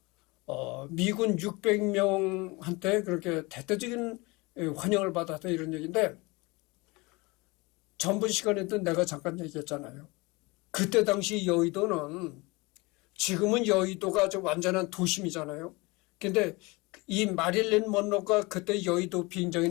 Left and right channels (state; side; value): quieter; right; 24.8 dB